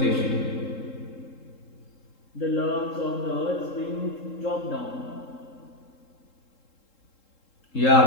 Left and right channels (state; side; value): late; right; 3.7 ms